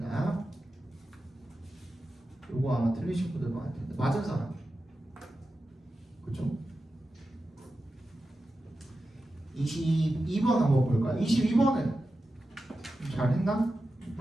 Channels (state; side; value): normal; both; correlation 0.92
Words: 요거 아마 틀리신 분들 많을 텐데 맞은 사람 그쵸? 22번 한번 볼까요? 22번은 잘했나?